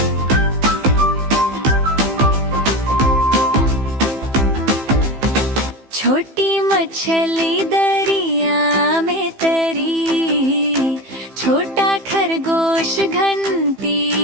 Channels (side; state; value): left; late; 15 ms